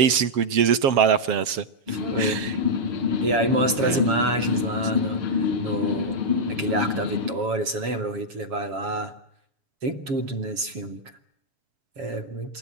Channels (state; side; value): late; left; 7.3 ms